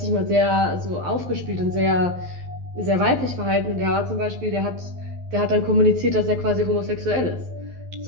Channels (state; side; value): late; left; 12 ms